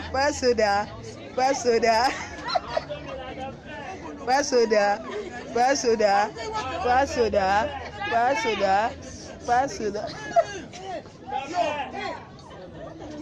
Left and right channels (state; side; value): identical; both; correlation 1.00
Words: Paso da. Paso da. Pasoda, pasoda, pasoda, pasoda, pasoda.